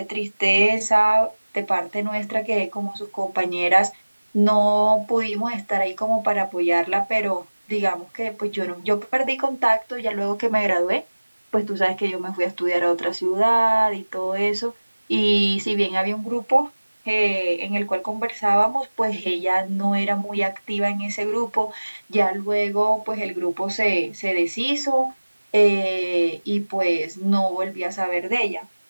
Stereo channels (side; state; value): both; inverted; correlation -1.00